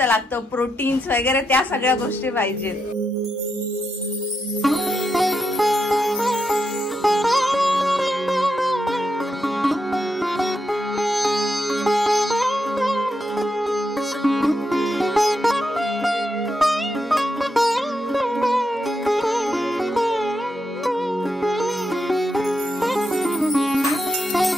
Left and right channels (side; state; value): both; normal; correlation 0.84